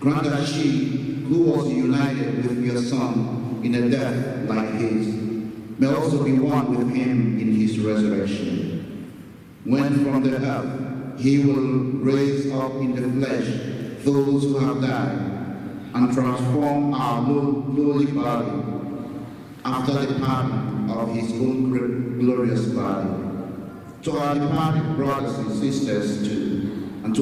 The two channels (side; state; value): both; identical; correlation 1.00